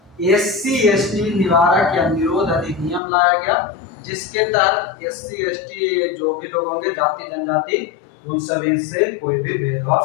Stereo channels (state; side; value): drops out; right; at 3.0 s